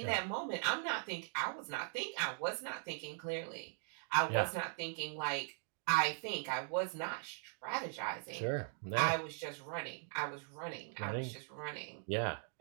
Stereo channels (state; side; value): silent; left; 51 dB below the other